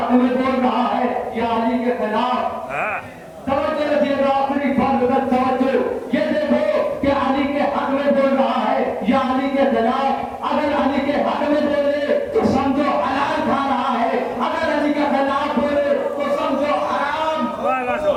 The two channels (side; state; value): both; identical; correlation 1.00